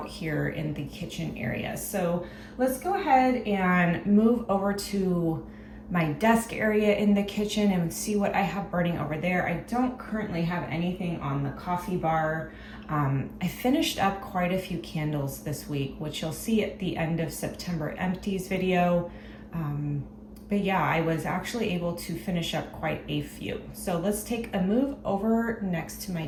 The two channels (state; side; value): identical; both; correlation 1.00